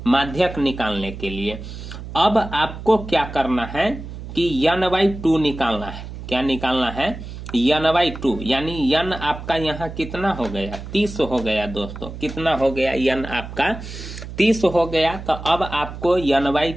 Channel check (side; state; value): right; noise; hum, 11 dB below the sound